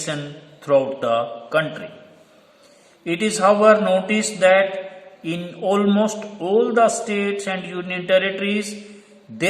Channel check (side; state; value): both; identical; correlation 1.00